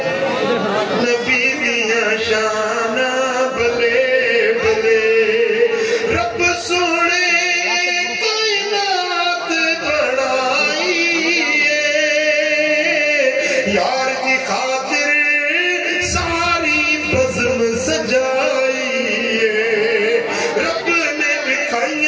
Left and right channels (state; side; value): identical; both; correlation 1.00